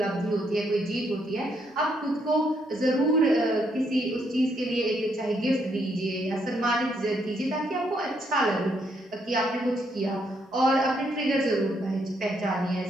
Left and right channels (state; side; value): normal; both; correlation 0.74